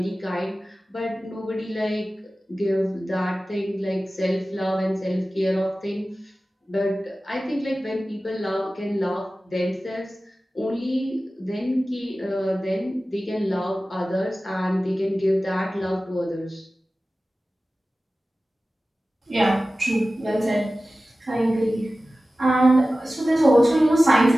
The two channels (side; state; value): both; normal; correlation 0.96